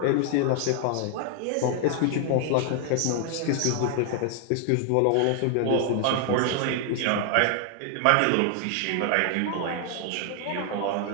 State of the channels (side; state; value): both; different; correlation 0.00